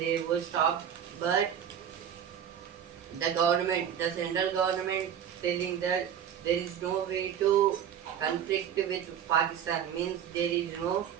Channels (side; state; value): left; quieter; 9.0 dB